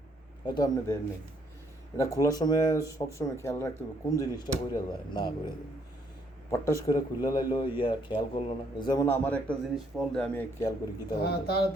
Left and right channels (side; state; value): both; normal; correlation 0.69